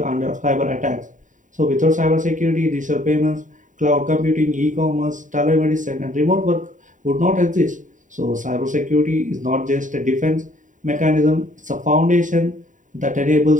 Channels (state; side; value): late; left; 0.37 ms